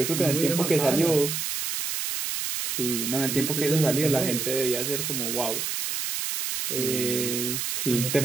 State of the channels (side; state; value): right; noise; hiss, 2 dB below the sound